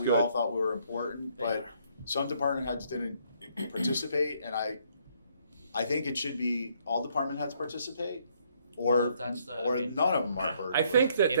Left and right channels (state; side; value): inverted; both; correlation -0.69